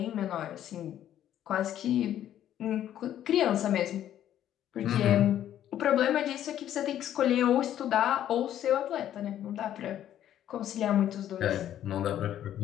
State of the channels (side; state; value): right; quieter; 11.3 dB